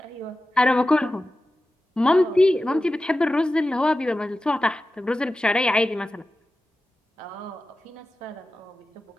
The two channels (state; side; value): normal; both; correlation 0.94